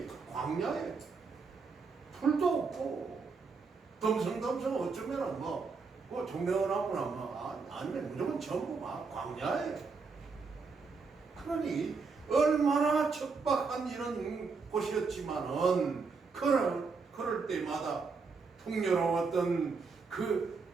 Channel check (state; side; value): quieter; left; 4.7 dB